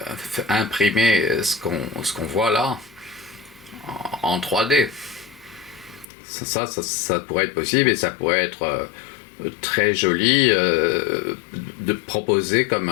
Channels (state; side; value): drops out; right; at 6.1 s